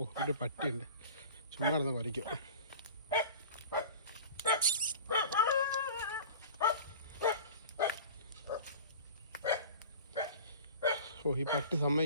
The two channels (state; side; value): inverted; both; correlation -0.39